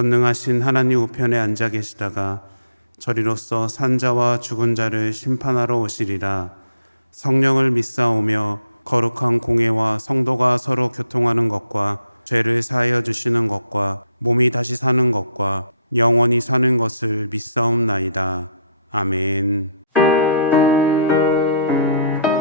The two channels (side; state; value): both; inverted; correlation -0.71